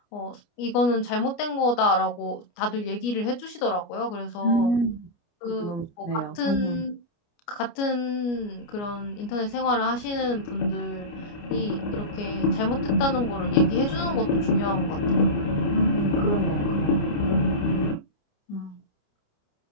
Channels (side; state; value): right; late; 29 ms